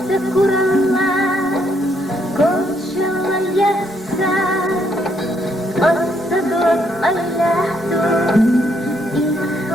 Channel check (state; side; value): normal; both; correlation 0.73